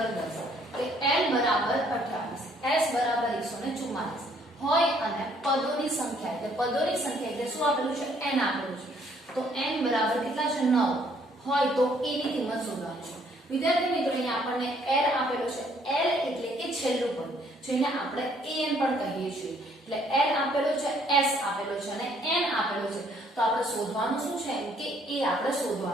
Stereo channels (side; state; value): both; normal; correlation 0.64